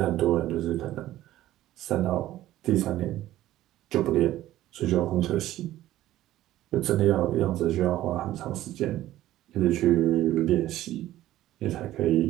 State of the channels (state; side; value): quieter; left; 14.4 dB